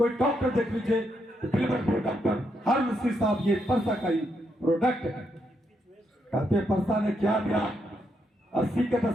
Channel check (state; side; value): normal; both; correlation 0.79